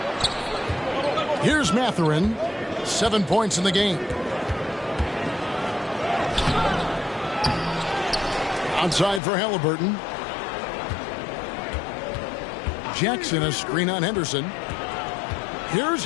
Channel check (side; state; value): right; drops out; at 9.2 s